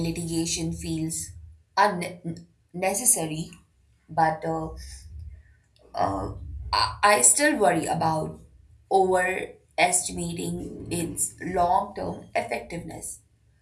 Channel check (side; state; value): both; identical; correlation 1.00